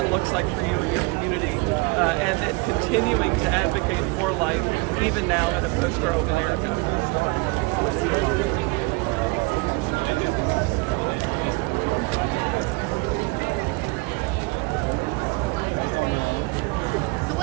looks like for you and your community, and continuing to advocate for life, even now in a post-Roe America.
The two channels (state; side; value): quieter; left; 27.0 dB